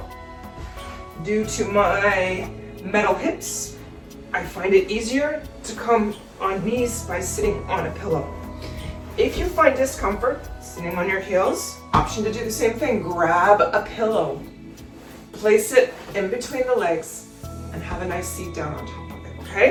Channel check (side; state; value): both; identical; correlation 1.00